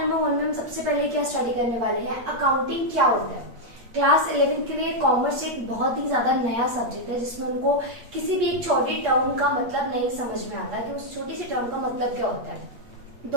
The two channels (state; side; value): late; left; 8.5 ms